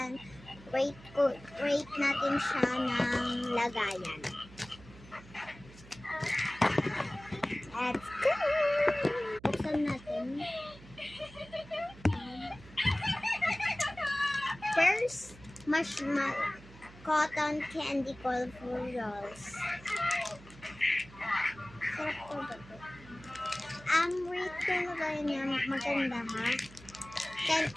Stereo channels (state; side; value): noise; right; hum, 20 dB below the sound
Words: ng lagayan. Let's go! Buksan natin. First, marshmallow cotton candy colorful rolls. Sarap po ba ito? Rate ko na kayo niya. Maganda ha.